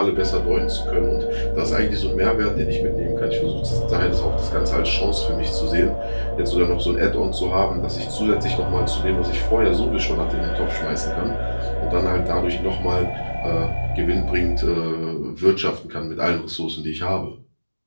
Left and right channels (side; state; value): both; inverted; correlation -1.00